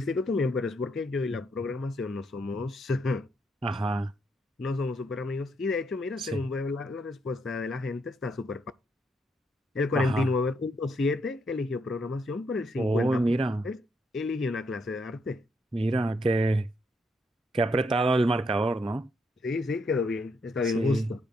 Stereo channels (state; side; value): normal; both; correlation 0.76